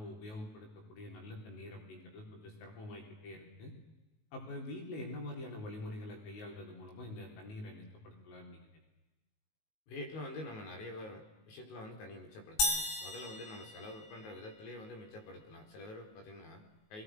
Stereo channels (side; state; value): right; late; 19 ms